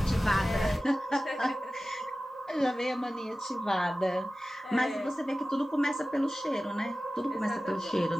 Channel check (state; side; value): normal; both; correlation 0.96